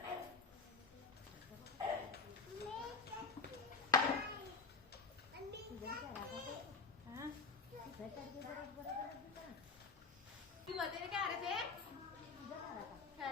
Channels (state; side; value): quieter; right; 4.6 dB